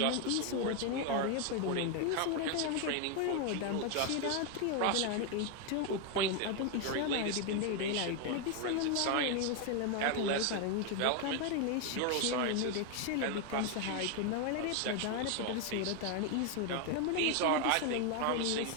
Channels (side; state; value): both; different; correlation 0.01